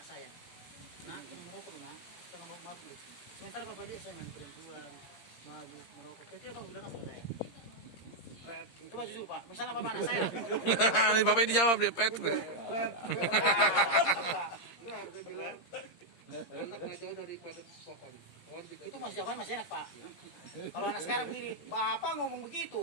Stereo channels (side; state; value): right; late; 17 ms